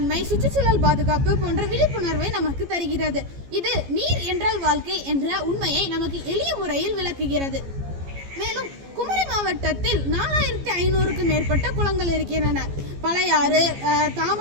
சுற்றுச்சூழல் பாதுகாப்பு போன்ற விழிப்புணர்வை நமக்கு தருகிறது. இது நீர் என்றால் வாழ்க்கை என்ற உண்மையை நமக்கு எளிய முறையில் விளக்குகிறது. மேலும் குமரி மாவட்டத்தில் 4500க்கும் மேற்பட்ட குளங்கள் இருக்கின்றன. பழையாறு,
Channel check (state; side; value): late; left; 14 ms